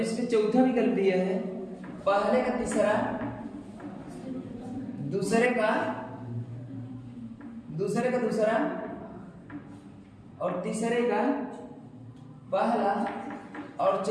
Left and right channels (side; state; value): both; identical; correlation 1.00